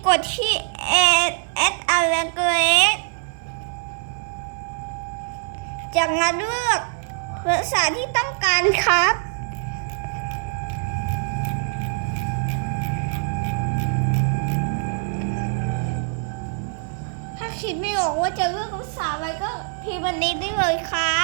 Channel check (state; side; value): silent; left; 63 dB below the other